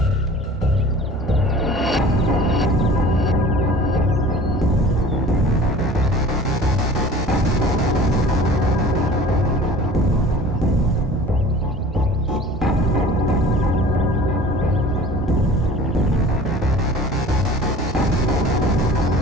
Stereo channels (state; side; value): normal; both; correlation 0.44